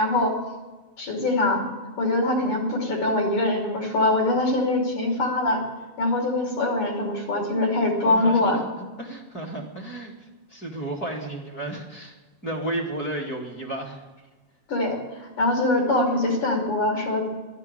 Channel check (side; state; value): right; late; 7.3 ms